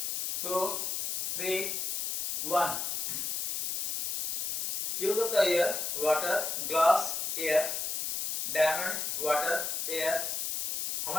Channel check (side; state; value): left; noise; hiss, 2 dB below the sound